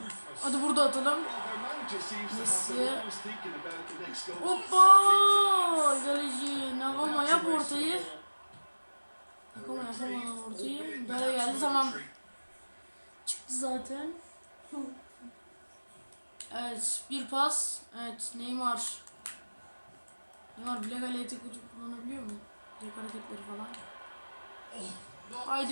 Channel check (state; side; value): inverted; both; correlation -1.00